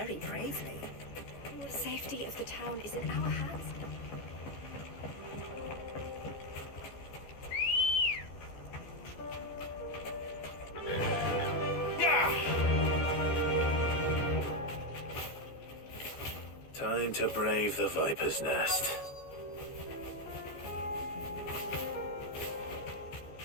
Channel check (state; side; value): late; right; 14 ms